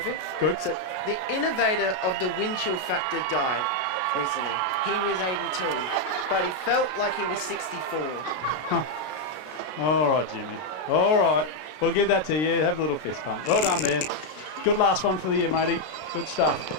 Good. So, the innovator of the wind chill factor died recently. He was 82, but he felt like he was 64. All right, Jimmy. All right. We'll give that to you. Have a little fist pump. Well done there. Good last one for the year, matey. Good stuff.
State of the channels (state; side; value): late; right; 33 ms